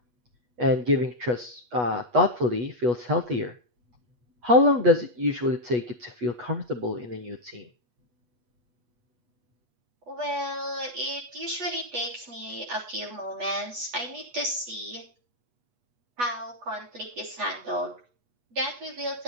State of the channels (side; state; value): left; late; 8.2 ms